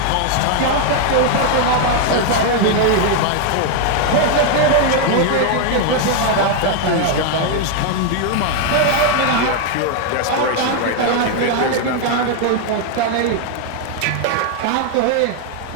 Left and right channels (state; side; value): different; both; correlation 0.00